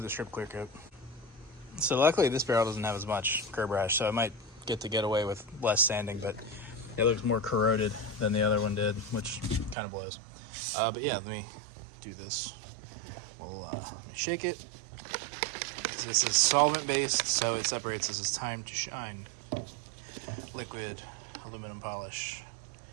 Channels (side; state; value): left; drops out; at 9.8 s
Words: the strip clear coat. So luckily this barrel doesn't have as much curb rash, so I might get away with less sanding, but it looks more corroded than the other one did, which kind of blows. But yeah, let me do this. We'll shake it. This is solvent based, so it separates. This is Time to Shine liquid aluminum polish.